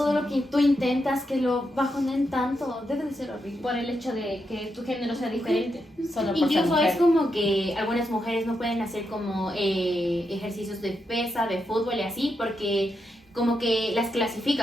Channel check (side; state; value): both; normal; correlation 0.84